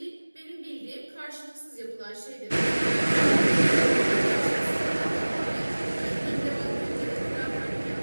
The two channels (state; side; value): inverted; both; correlation -1.00